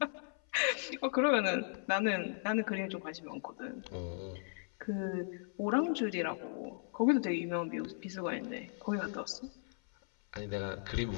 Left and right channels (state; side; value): silent; right; 53 dB below the other